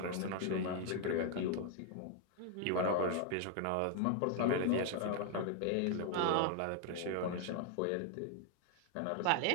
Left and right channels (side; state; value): both; different; correlation 0.00